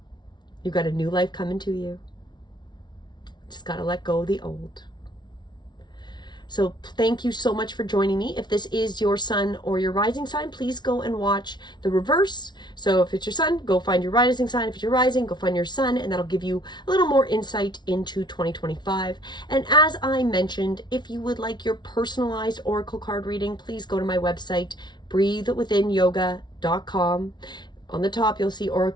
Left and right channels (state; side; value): late; right; 0.20 ms